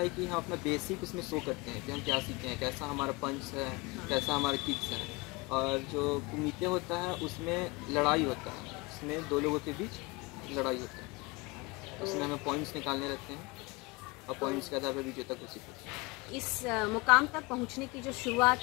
कि हम अपना बेसिक उसमें शो करते हैं कि हम क्या सीखे हैं, कैसा हमारा पंच है, कैसा हमारा किक्स है। और जो कुमिते होता है उसमें लड़ाई होता है, उसमें दो लोगों के बीच लड़ाई होता है। उसमें हमें पॉइंट्स निकालने रहते हैं और पॉइंट्स के आधार पर विजेता घोषित होता है। इस मुकाम तक पहुंचने की जो शुरुआत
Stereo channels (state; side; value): quieter; right; 25.1 dB